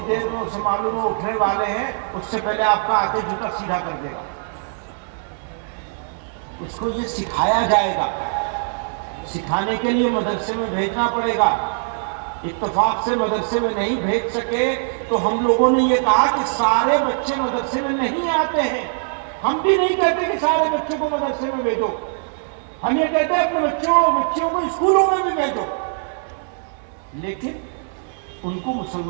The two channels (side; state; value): left; silent; 61 dB below the other